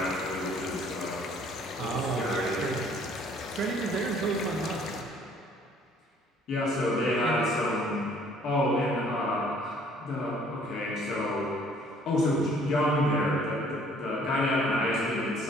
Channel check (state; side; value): normal; both; correlation 0.58